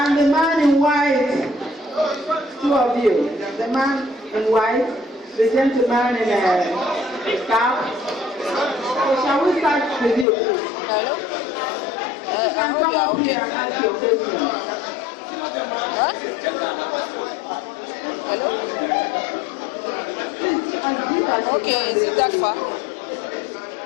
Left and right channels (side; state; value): right; drops out; at 10.2 s